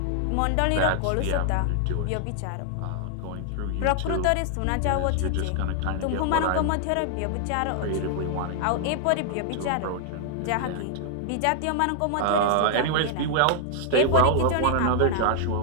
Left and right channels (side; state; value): both; different; correlation 0.00